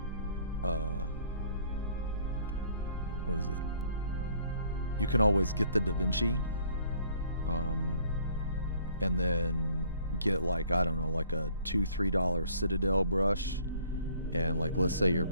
what is it? You can always get the Da Vinci, and then get like, I don't know, like a $2-3 Citadel brush, and like, let's say you're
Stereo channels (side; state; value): both; inverted; correlation -0.59